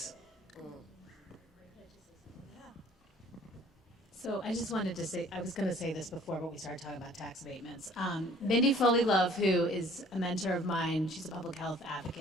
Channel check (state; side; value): normal; both; correlation 0.54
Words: So I just wanted to say, I was going to say this before, but we started talking about tax abatements. Mindy Foley Love, who is a mentor of mine, she's a public health